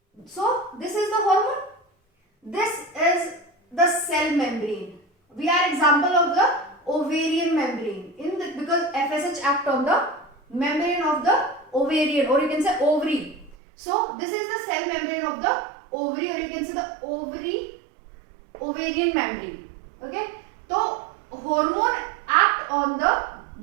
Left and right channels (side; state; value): left; drops out; at 13.6 s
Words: So this is the hormone. This is the cell membrane. We are example of the ovarian membrane. Because FSH act on the membrane of the ovarian, or you can say ovary. So this is the cell membrane of the ovary, or you can say the ovarian membrane. Okay. So hormone act on